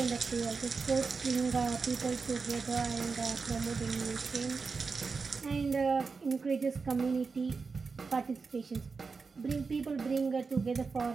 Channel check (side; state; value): left; quieter; 4.7 dB